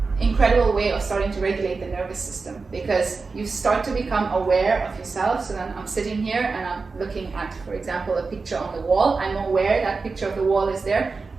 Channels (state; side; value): quieter; left; 4.3 dB